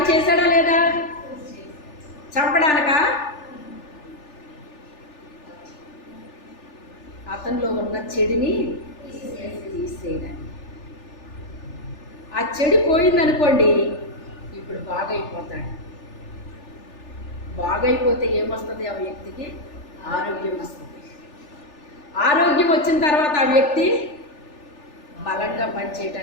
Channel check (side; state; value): right; late; 3.4 ms